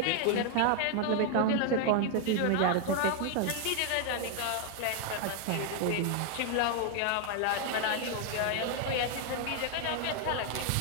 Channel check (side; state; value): both; different; correlation 0.01